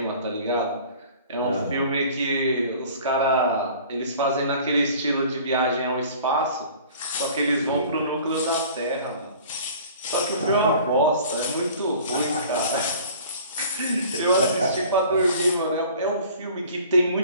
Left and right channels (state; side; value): inverted; both; correlation -0.47